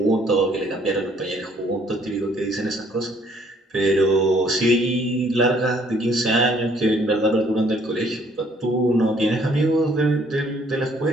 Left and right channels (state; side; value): normal; both; correlation 0.63